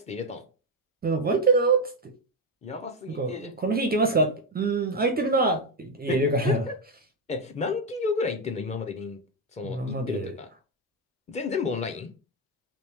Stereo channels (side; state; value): both; normal; correlation 0.05